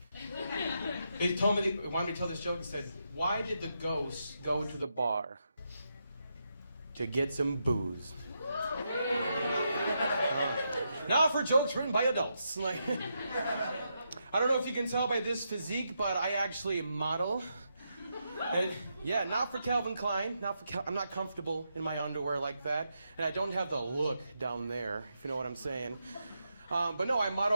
He wanted me to tell this joke and said, "Why did the ghost go to the bar? To get some booze." Now for jokes written by adults. Like, I don't know if you can tell by this physique, but I actually model. And yeah, not for Calvin Klein. I'm not comfortable in my underwear like that, and I don't have the look down there, if you know what I'm saying. But no, I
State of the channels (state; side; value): inverted; both; correlation -0.83